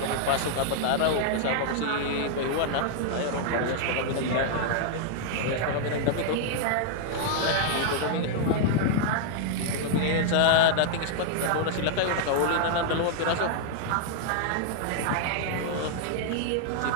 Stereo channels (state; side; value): different; both; correlation -0.01